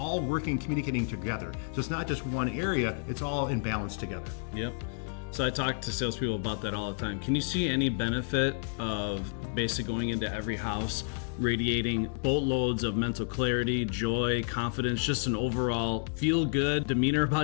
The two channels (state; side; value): silent; right; digital silence